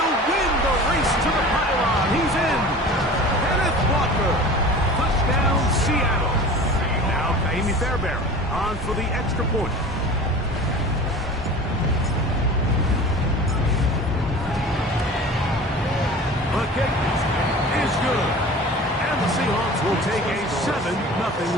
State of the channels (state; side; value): normal; both; correlation 0.39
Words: win the race to the pylon. He's in. Kenneth Walker. Touchdown, Seattle. Now, Kaimi Fairbairn on for the extra point. The kick is good. And the Seahawks will take a